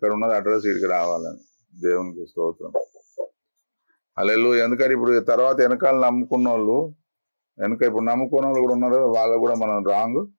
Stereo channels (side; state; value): both; inverted; correlation -1.00